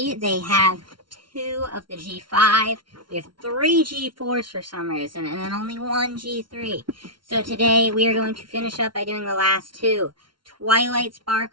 they have 2 of the G5, we have 3 G4s for some reason, and then only 1 G3. So today we are going to finish up by doing the last 2. Twilight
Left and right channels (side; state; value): left; late; 0.73 ms